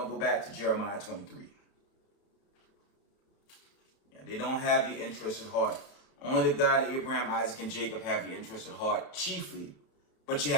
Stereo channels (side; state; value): right; late; 31 ms